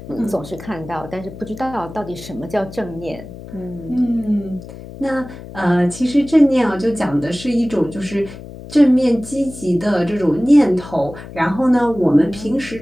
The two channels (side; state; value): left; noise; hum, 14 dB below the sound